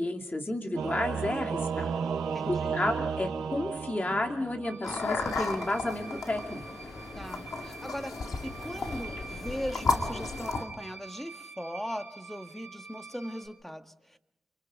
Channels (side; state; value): both; normal; correlation 0.84